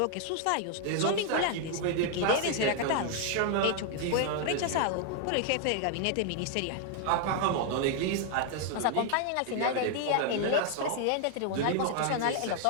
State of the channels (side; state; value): both; different; correlation 0.00